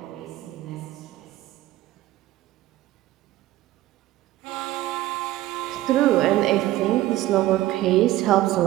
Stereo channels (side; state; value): left; quieter; 15.6 dB